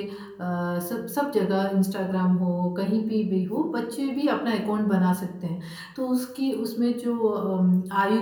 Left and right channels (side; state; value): both; identical; correlation 1.00